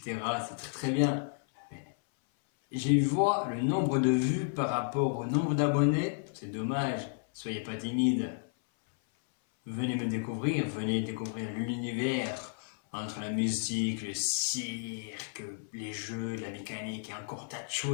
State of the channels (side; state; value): right; silent; 56 dB below the other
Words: C'est très très bien. Mais j'ai vu le nombre de vues par rapport au nombre d'abonnés. C'est dommage, soyez pas timide. Venez me découvrir, venez découvrir l'univers entre la musique, le cirque, les jeux, la mécanique et encore tas de